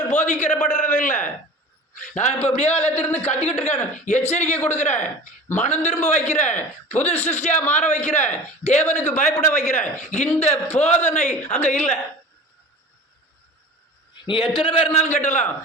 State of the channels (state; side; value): normal; both; correlation 0.37